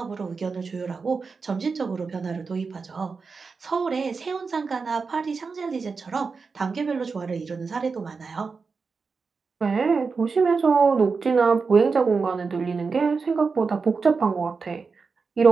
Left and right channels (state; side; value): quieter; left; 4.8 dB